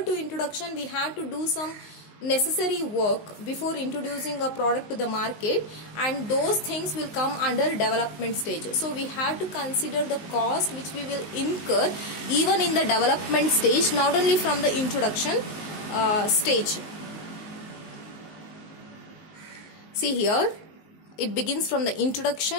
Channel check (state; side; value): late; right; 19 ms